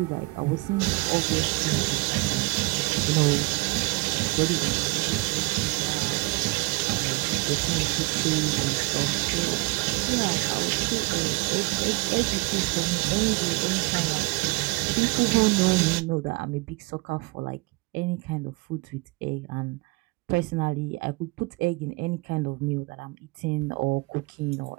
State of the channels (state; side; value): quieter; left; 24.8 dB